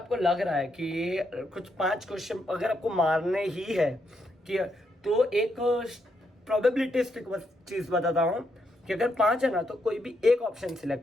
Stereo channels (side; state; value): both; normal; correlation 0.79